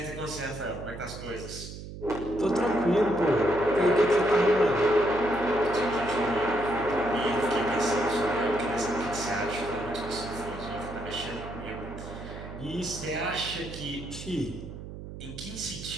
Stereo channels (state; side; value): noise; right; hum, 11 dB below the sound